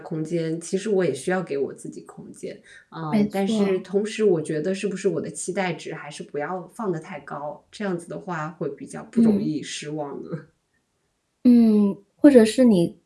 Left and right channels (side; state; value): both; identical; correlation 1.00